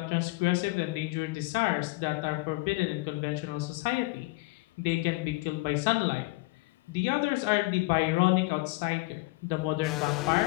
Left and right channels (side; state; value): right; quieter; 23.3 dB